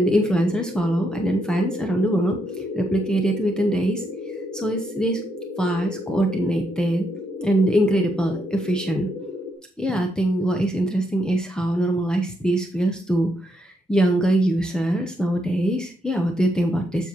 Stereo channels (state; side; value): normal; both; correlation 0.78